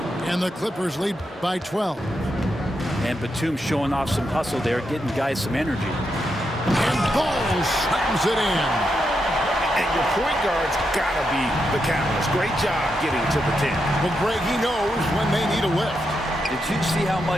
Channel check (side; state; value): both; normal; correlation 0.84